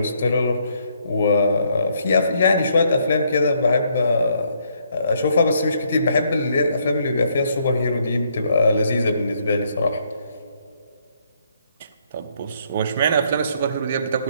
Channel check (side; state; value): both; inverted; correlation -0.71